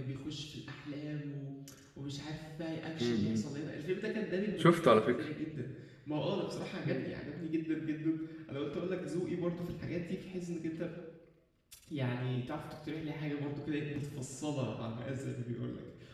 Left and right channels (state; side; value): identical; both; correlation 1.00